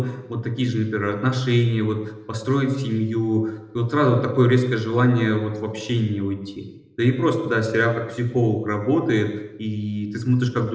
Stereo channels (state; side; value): identical; both; correlation 1.00